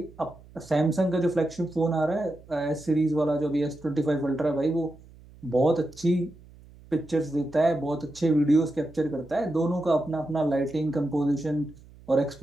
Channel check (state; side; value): noise; right; hum, 23 dB below the sound